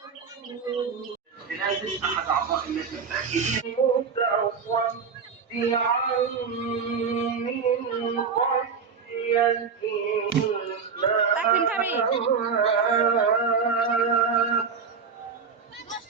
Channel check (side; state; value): left; quieter; 5.8 dB